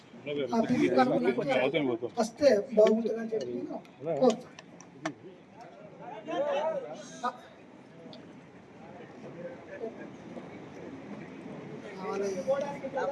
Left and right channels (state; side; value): identical; both; correlation 1.00